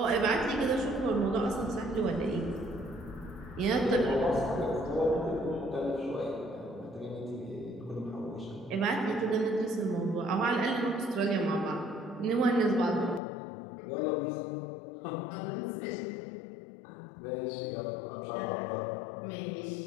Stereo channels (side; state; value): right; drops out; at 13.2 s